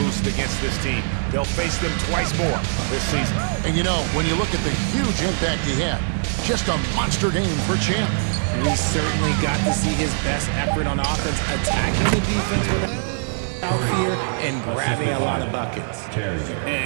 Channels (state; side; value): silent; left; 64 dB below the other